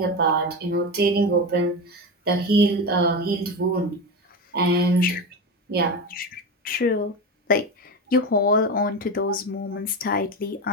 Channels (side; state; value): both; normal; correlation 0.20